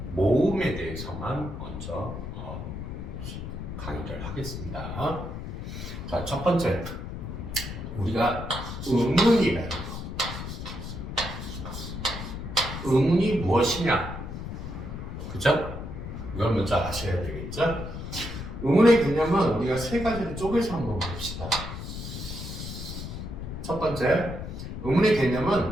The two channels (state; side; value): noise; left; rumble, 7 dB below the sound